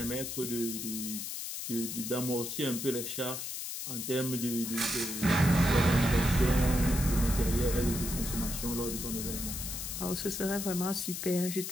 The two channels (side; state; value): left; noise; hiss, 5 dB below the sound